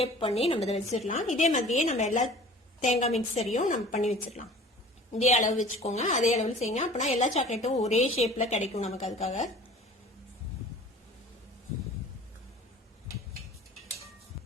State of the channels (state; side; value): normal; both; correlation 0.45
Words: பண்ணி நம்ம இதை வச்சிடலாம். இதே மாதிரியே நம்ம எல்லா தேங்காய் மிக்சரையும் நம்ம பண்ணி வச்சிடலாம். இதே அளவு வச்சுக்கோங்க. அதே அளவில் செய்யுங்க. அப்படின்னா எல்லா சாக்லேட்டும் ஒரே ஷேப்ல கிடைக்கும் நமக்கு. அதுக்காக